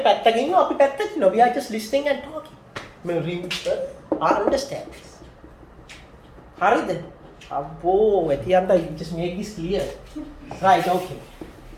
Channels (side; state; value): both; identical; correlation 1.00